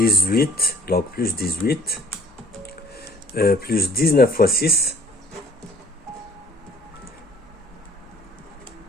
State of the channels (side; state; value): both; normal; correlation 0.55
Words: donc plus 18, plus 19 fois 6,